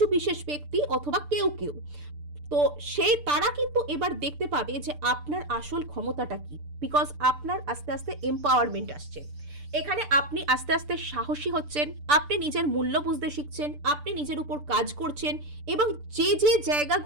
বিশেষ ব্যক্তি অথবা কেউ কেউ, তো সেই তারা কিন্তু এবার দেখতে পাবে যে আপনার আসল ক্ষমতাটা কি, বিকজ আপনার আস্তে আস্তে এম্পাওয়ারমেন্ট আসছে। এখানে আপনি আস্তে আস্তে সাহসী হচ্ছেন, আপনি নিজের মূল্য বুঝতে শিখছেন, আপনি নিজের উপর কাজ করছেন, এবং যে যে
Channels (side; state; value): left; late; 6.8 ms